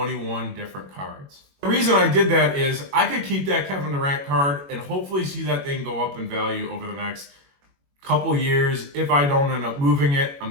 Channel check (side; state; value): left; late; 21 ms